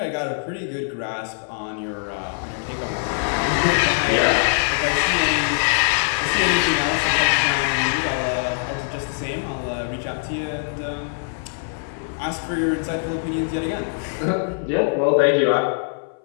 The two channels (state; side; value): silent; right; 60 dB below the other